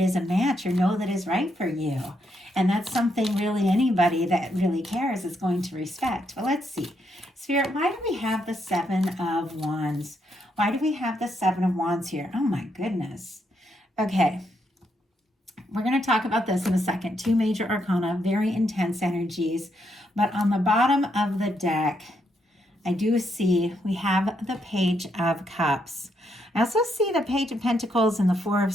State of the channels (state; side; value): normal; both; correlation 0.77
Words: a match, or that is right for you. And that's something really anybody that really cares is going to respect. But let's see. Spirit, why do we have the Seven of Wands? Why do we have the Seven of Wands here? Oh my goodness. Okay. We're going to talk about this in a second. Two major arcana, very intense energies. But on the bottom of the deck, I do see we have the Page of Cups. I also see the Page of Pentacles and the Four of